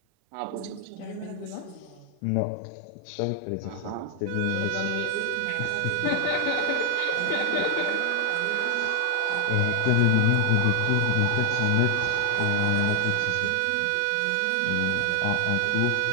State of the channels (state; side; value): different; both; correlation 0.00